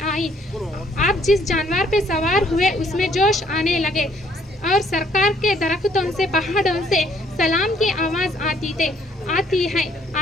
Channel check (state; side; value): normal; both; correlation 0.64